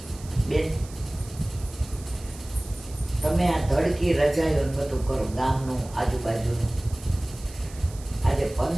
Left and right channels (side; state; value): right; noise; hiss, 19 dB below the sound